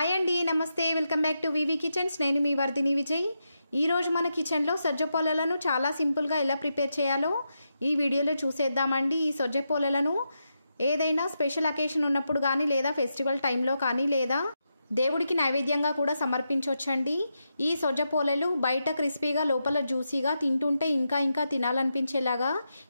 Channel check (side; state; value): both; inverted; correlation -0.86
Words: అండి, నమస్తే. Welcome back to VV kitchens. నేను మీ వర్ధిని విజయ్. ఈరోజు మన కిచెన్లో సజ్జ పోలలను చాలా సింపుల్గా ఎలా ప్రిపేర్ చేయాలో ఈ వీడియోలో చూసేద్దామండి. ఈ సజ్జ పోలలను ఏదైనా స్పెషల్ అకేషన్ ఉన్నప్పుడు కానీ, లేదా ఫెస్టివల్ టైంలో కానీ, లేదా దేవుడికి నైవేద్యంగా కూడా సమర్పించవచ్చండి. ఈ సజ్జ పోలలు బయట క్రిస్పీగా, లోపల జ్యూసీగా, తింటుంటే ఇంకా తినాలనిపించేలాగా